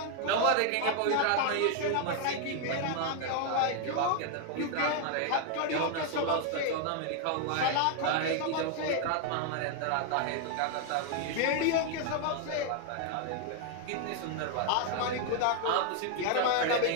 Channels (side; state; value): both; different; correlation 0.00